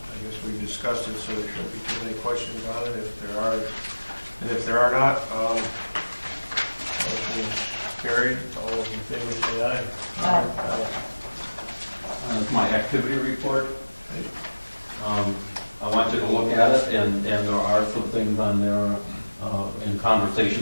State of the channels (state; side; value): inverted; both; correlation -1.00